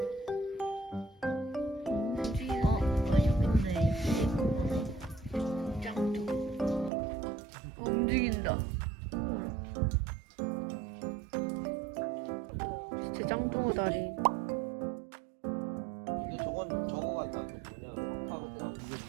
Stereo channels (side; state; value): left; drops out; at 6.9 s